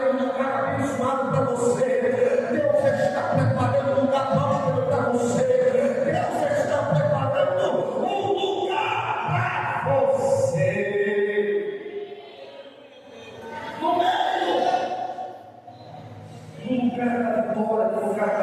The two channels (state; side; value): identical; both; correlation 1.00